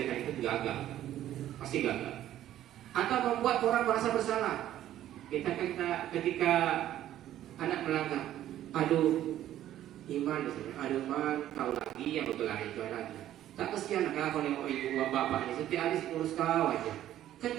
itu gagal, pasti gagal. Atau membuat orang merasa bersalah. Ketika anak melanggar, aduh Iman, kau lagi yang berkelahi itu lagi. Tak kesian anak kalau nengok ibu bapak ini setiap hari ngurus kau aja.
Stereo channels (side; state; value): left; quieter; 12.5 dB